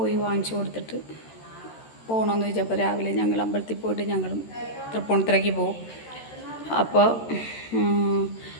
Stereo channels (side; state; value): right; late; 13 ms